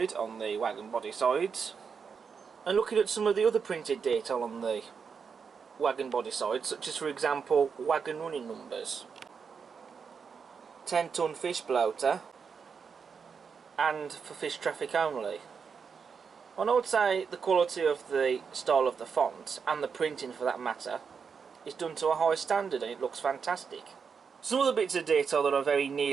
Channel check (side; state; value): left; quieter; 6.0 dB